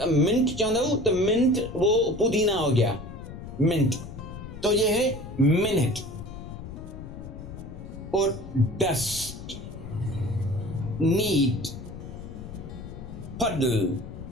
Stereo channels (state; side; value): noise; left; rumble, 11 dB below the sound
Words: मिंट चाहता हूं तो मिंट वो पुदीना हो गया, मिंट। तो ये है मिनट। और डस्ट, नीट, पडल,